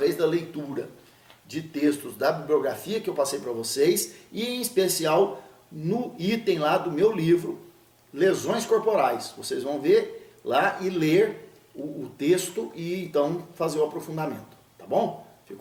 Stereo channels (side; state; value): both; identical; correlation 1.00